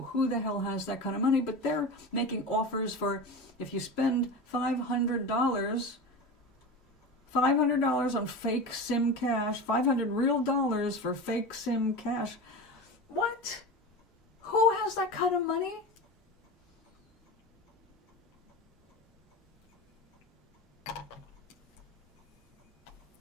who the hell has that kind of money, but they're making offers for, if you spend $500 on fake Sim cash, $500 real dollars for fake Sim cash. What? Who has that kind of money?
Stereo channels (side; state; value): both; normal; correlation 0.27